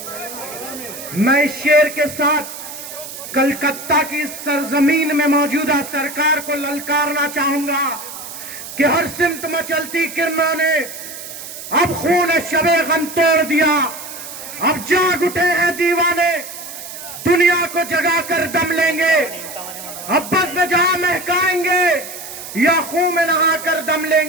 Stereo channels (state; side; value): noise; right; hiss, 11 dB below the sound